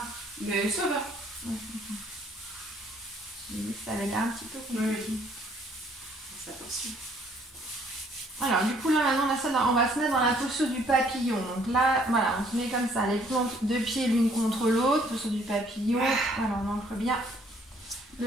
Mais ça va. Ouais, j'ai vu que ça avait l'air un petit peu compliqué. Oui. C'est attention. Alors, du coup, là, maintenant, on va se mettre dans la posture du papillon. Donc là, voilà, on se met comme ça, les plantes de pieds l'une contre l'autre, posture du papillon. Voilà, on ancre bien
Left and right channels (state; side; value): normal; both; correlation 0.62